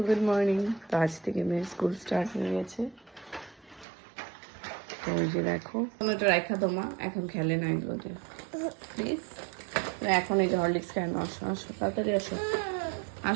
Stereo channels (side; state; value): left; drops out; at 3.9 s